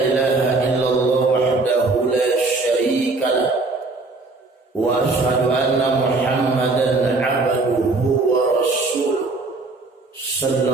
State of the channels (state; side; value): quieter; left; 3.5 dB